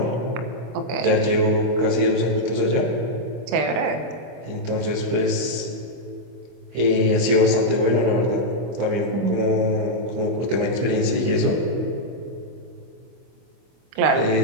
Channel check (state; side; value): late; left; 24 ms